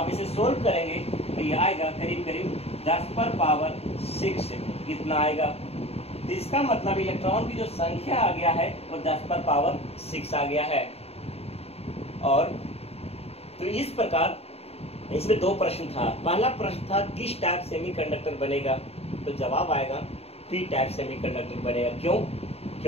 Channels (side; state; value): right; late; 0.29 ms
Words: इसे सोल्व करेंगे तो ये आएगा करीब करीब 10 पर पावर 6। कितना आएगा? तो इसका मतलब इलेक्ट्रॉन की जो संख्या आ गया है वो 10 पर पावर 6 आ गया है। और तो इस प्रकार इसमें 2 प्रश्न था। पहला प्रश्न था किस टाइप सेमीकंडक्टर बनेगा, तो जवाब आएगा पी टाइप सेमीकंडक्टर बनेगा। क्यों?